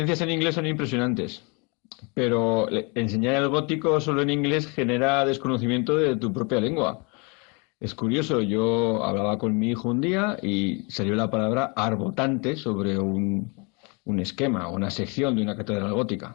en inglés son impresionantes. Pero enseñar el gótico solo en inglés genera desconocimiento de tu propia lengua. Es curioso, yo hablaba con mi hijo un día y salió la palabra arbotante sobre un esquema o una sección de una catedral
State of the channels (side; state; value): right; quieter; 31.7 dB